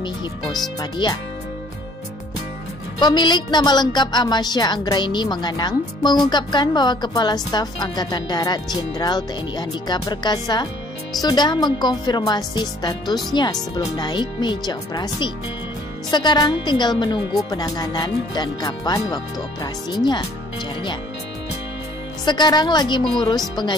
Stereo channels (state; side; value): normal; both; correlation 0.58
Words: hipospadia. Pemilik nama lengkap Amasya Anggraini Manganang mengungkapkan bahwa Kepala Staf Angkatan Darat Jenderal TNI Andika Perkasa sudah mengkonfirmasi statusnya sebelum naik meja operasi. Sekarang tinggal menunggu penanganan dan kapan waktu operasinya, ujarnya. Sekarang lagi mengurus